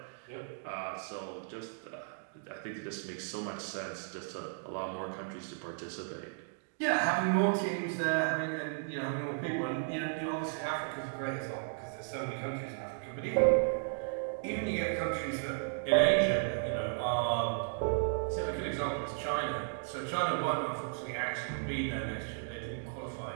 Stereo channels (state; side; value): silent; left; digital silence